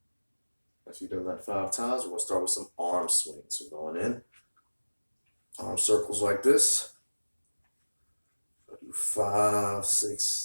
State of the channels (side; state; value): both; inverted; correlation -1.00